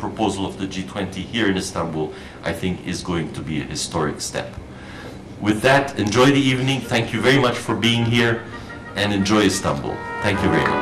of the G20 here in Istanbul, I think is going to be a historic step. With that, enjoy the evening. Thank you very much for being here, and enjoy Istanbul. Thank you very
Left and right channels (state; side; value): identical; both; correlation 1.00